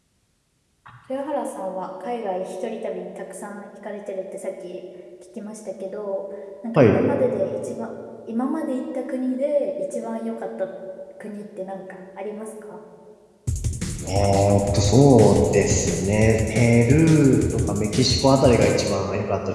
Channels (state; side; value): identical; both; correlation 1.00